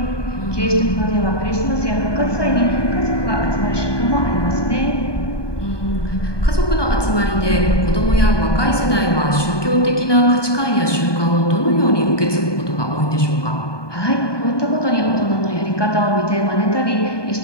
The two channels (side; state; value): right; late; 1.2 ms